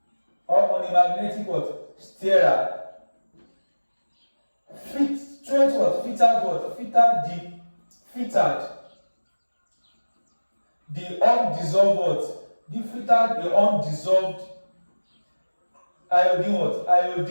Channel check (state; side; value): inverted; both; correlation -1.00